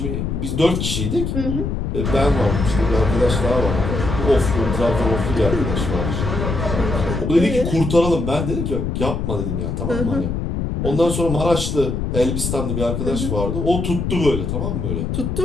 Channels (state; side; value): noise; left; rumble, 2 dB below the sound